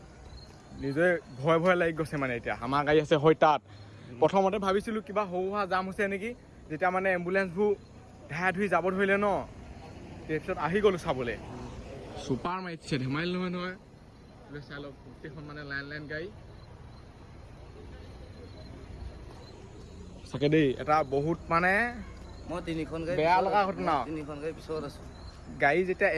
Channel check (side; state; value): both; identical; correlation 1.00